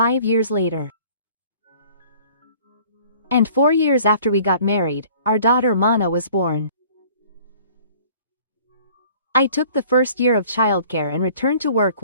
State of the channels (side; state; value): both; inverted; correlation -0.51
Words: years later. And 4 years after we got married, our daughter Mana was born. I took the first year of childcare and returned to work